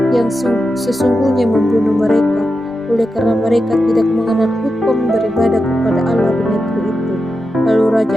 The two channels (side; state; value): both; normal; correlation 0.89